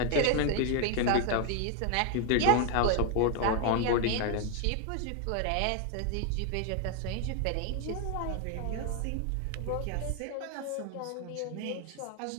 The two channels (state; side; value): different; both; correlation 0.01